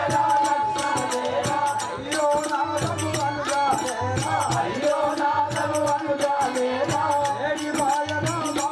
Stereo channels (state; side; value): identical; both; correlation 1.00